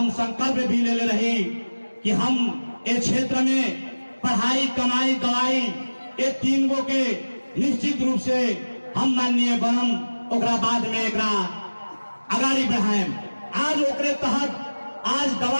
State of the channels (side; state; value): both; inverted; correlation -1.00